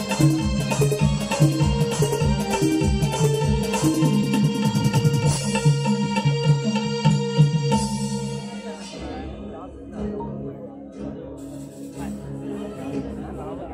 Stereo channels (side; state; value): both; identical; correlation 1.00